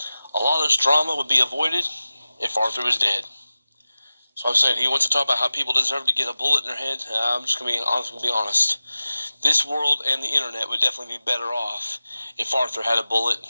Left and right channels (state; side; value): inverted; both; correlation -0.95